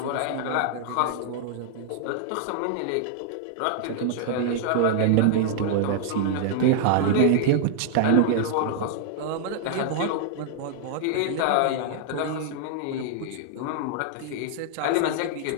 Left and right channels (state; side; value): different; both; correlation -0.01